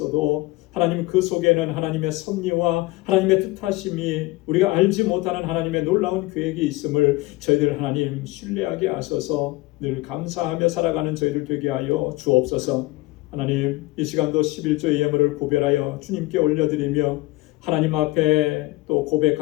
하나님 그 속에는 하나님의 섭리와 하나님의 뜻하심이 우리가 알지 못하는 하나님의 놀라운 계획이 있음을 저희들 하나님 신뢰하게 하셔서 늘 감사하며 살아가는 저희들 되게 하여 주옵소서. 하나님, 이 시간도 11조의 예물을 구별하여 주님께 올려드리며 하나님 앞에 또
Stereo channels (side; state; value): right; quieter; 20.3 dB